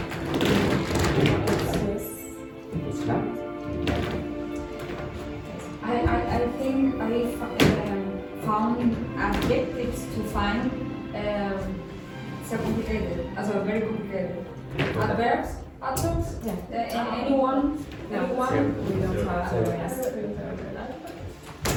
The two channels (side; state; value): both; identical; correlation 1.00